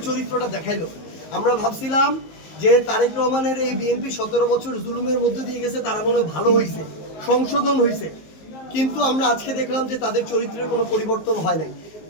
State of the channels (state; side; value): late; right; 19 ms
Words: চরিত্রটা দেখাইলো। আমরা ভাবছিলাম যে তারেক রহমানের এই বিএনপি 17 বছর জুলুমের মধ্যে দিয়ে গেছে, তারা মনে হয় ভালো হয়েছে, সংশোধন হয়েছে, কিন্তু আমরা আজকে দেখলাম যে তাদের চরিত্রের কোনো পরিবর্তন হয় নাই।